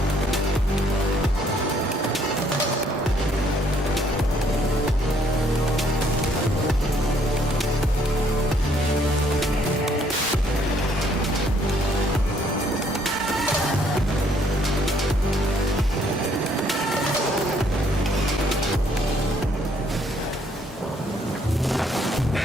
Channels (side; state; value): both; normal; correlation 0.66